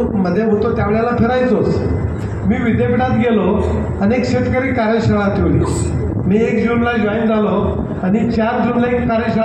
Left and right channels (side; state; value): both; identical; correlation 1.00